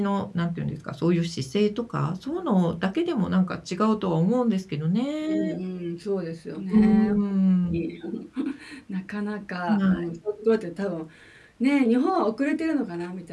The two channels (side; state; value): both; identical; correlation 1.00